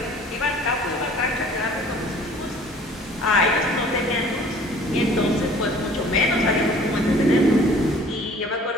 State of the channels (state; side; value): normal; both; correlation 0.51